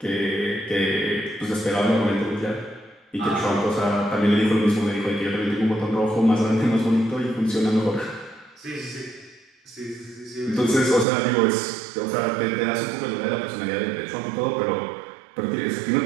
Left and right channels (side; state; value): left; drops out; at 11.1 s